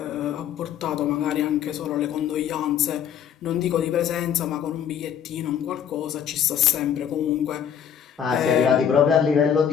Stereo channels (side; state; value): right; quieter; 8.7 dB